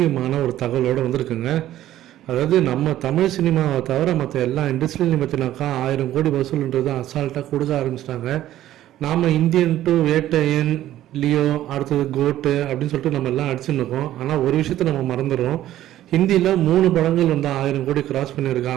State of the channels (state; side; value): quieter; left; 13.3 dB